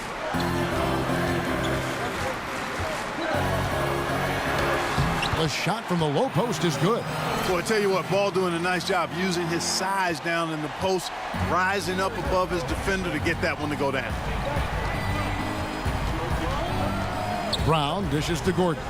The shot from the low post is good. Boy, I tell you what, Ball doing a nice job using his size down in the post, rising up above his defender to get that one to go down. Brown dishes to Gordon.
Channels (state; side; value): identical; both; correlation 1.00